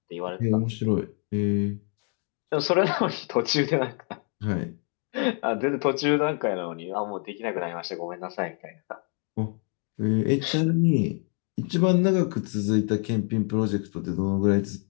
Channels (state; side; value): quieter; right; 38.4 dB